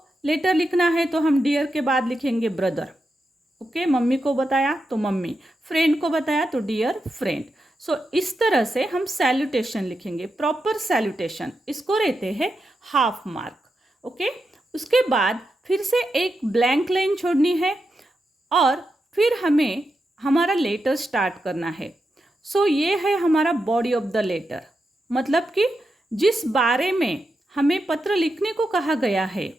लेटर लिखना है तो हम डियर के बाद लिखेंगे ब्रदर। ओके, मम्मी को बताया तो मम्मी, फ्रेंड को बताया तो डियर फ्रेंड। इस तरह से हम सैल्यूटेशन लिखेंगे, प्रॉपर सैल्यूटेशन। इसको रहते हैं हाफ मार्क। ओके, उसके बाद फिर से एक ब्लैंक लाइन छोड़नी है और फिर हमें हमारा लेटर स्टार्ट करना है। ये है हमारा बॉडी ऑफ द लेटर, मतलब कि जिस बारे में हमें पत्र लिखने को कहा गया है,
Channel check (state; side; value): normal; both; correlation 0.87